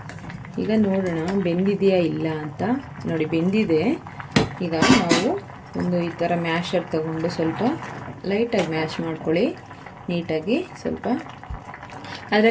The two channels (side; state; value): both; identical; correlation 1.00